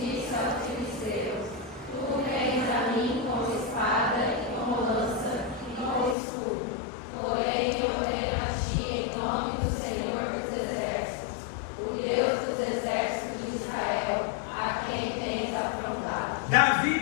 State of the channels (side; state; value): right; drops out; at 6.2 s